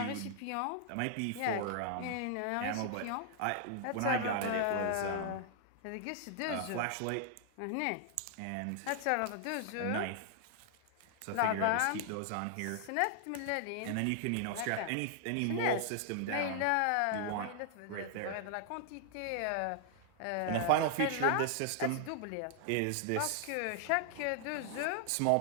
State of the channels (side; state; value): both; different; correlation 0.00